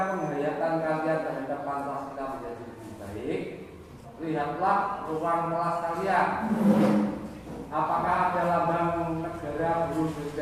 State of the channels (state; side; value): identical; both; correlation 1.00